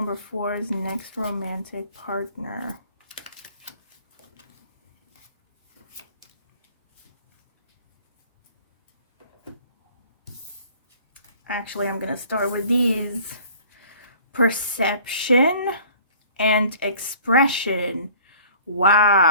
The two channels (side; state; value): both; inverted; correlation -0.51